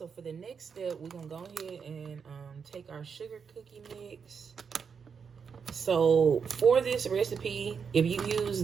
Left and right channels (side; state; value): left; quieter; 6.3 dB